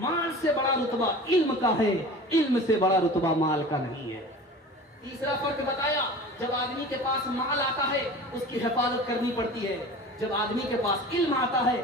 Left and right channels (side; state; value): both; normal; correlation 0.38